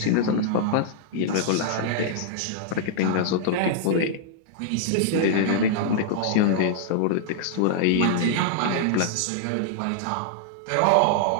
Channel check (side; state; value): both; different; correlation -0.01